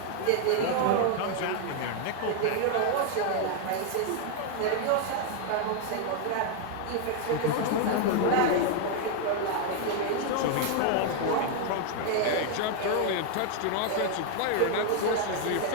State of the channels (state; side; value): different; both; correlation 0.00